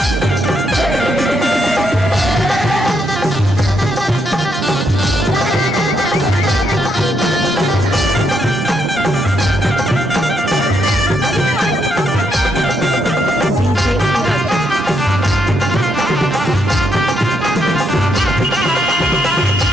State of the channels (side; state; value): both; normal; correlation 0.77